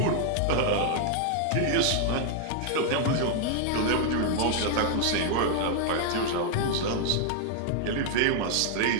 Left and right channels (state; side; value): different; both; correlation 0.00